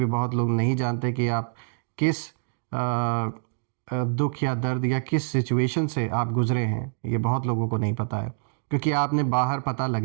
बहुत लोग नहीं जानते कि आप किस दुख या दर्द या किस सिचुएशन से आप गुज़रे हैं। ये बहुत लोगों को नहीं पता है क्योंकि आपने बाहर पता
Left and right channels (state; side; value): silent; left; digital silence